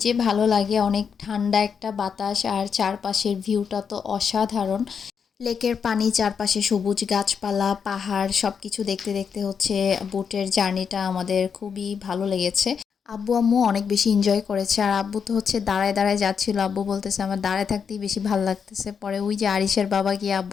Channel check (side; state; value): right; quieter; 6.6 dB